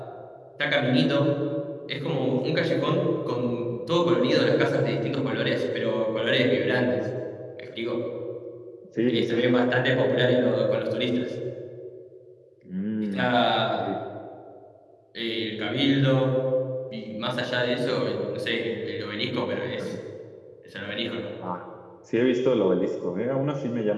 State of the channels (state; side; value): identical; both; correlation 1.00